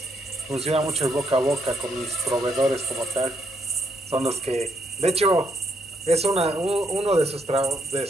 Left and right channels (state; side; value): normal; both; correlation 0.74